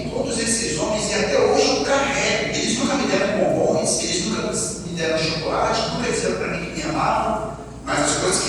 todos esses homens e até hoje eu carrego. Eles nunca me deram bombons, eles nunca me deram chocolate, nunca disseram para mim que me amavam, mas as coisas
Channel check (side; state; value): both; identical; correlation 1.00